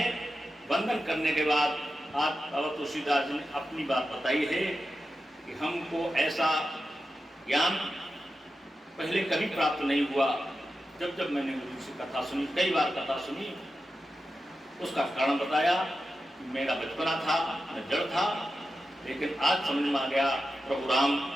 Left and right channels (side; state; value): both; normal; correlation 0.91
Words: वंदन करने के बाद आज बाबा तुलसीदास जी ने अपनी बात बताई है कि हमको ऐसा ज्ञान पहले कभी प्राप्त नहीं हुआ। जब जब मैंने गुरु से कथा सुनी, कई बार कथा सुनी, उसका कारण बताया कि मेरा बचपना था, मैं जड़ था, लेकिन आज समझ में आ गया प्रभु राम